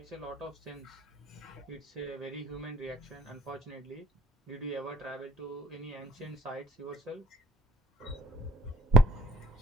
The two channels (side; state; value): both; normal; correlation 0.60